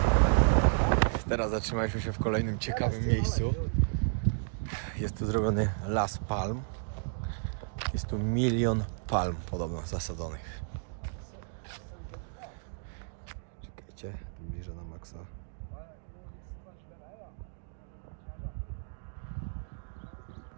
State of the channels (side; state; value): left; silent; digital silence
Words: Teraz zatrzymaliśmy się w kolejnym ciekawym miejscu. Jest tu zrobiony las palm. Jest tu 1 milion palm podobno zasadzonych. Czekajcie, bliżej na maksa.